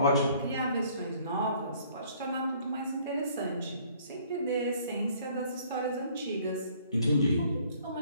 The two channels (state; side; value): inverted; both; correlation -0.59